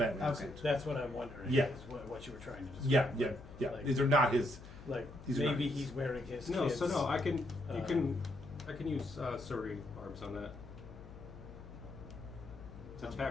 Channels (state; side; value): noise; left; hum, 16 dB below the sound